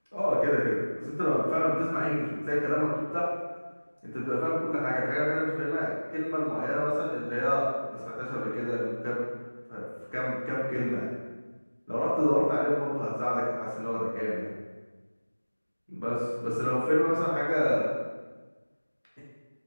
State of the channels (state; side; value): inverted; both; correlation -1.00